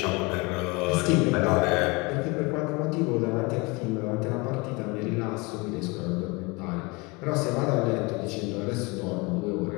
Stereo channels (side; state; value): right; quieter; 26.7 dB